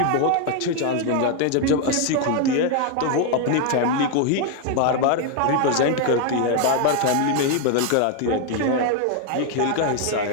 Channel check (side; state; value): both; different; correlation 0.01